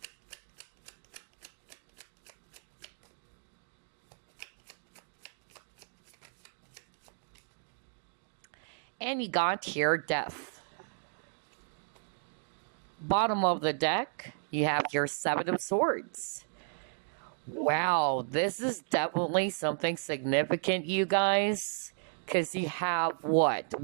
and you got here Death. Bottom of the deck, you have your 7 of Swords. Wow, this is definitely something significant, you guys. Because you have what?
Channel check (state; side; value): silent; left; digital silence